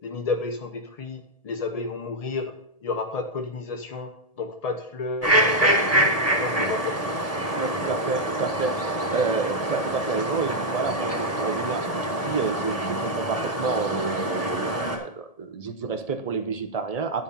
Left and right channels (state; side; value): late; right; 1.7 ms